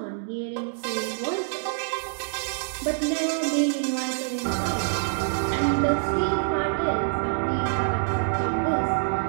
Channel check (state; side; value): silent; left; digital silence